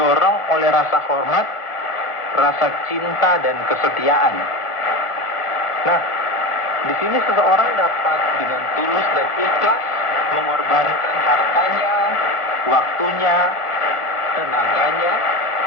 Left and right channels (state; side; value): late; right; 1.5 ms